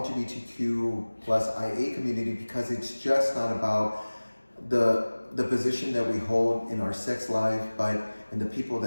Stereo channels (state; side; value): inverted; both; correlation -1.00